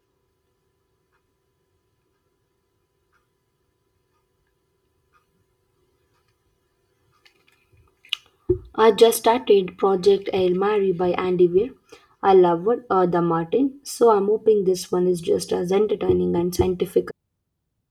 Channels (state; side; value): identical; both; correlation 1.00